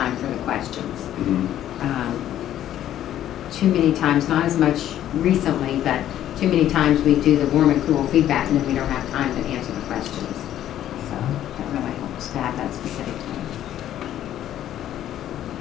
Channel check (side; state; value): right; quieter; 11.8 dB